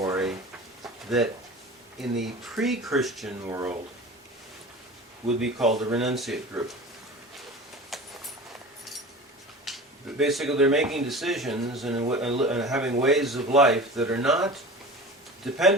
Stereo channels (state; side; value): normal; both; correlation 0.35